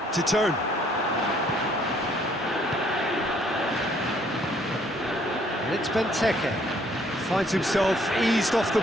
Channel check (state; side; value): normal; both; correlation 0.64